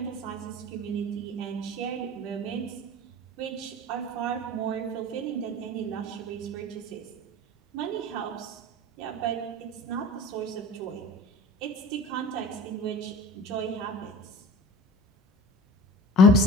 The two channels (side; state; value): both; normal; correlation 0.39